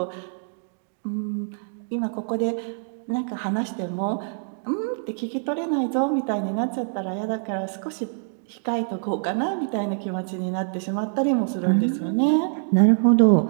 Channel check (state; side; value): silent; left; digital silence